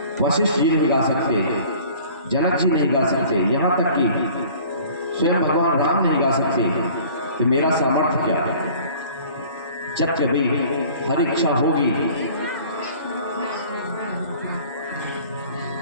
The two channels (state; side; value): inverted; both; correlation -0.48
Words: वशिष्ठ जी नहीं गा सकते, जनक जी नहीं गा सकते, यहाँ तक कि स्वयं भगवान राम नहीं गा सकते, तो मेरा सामर्थ्य क्या है। जब कभी हर इच्छा होगी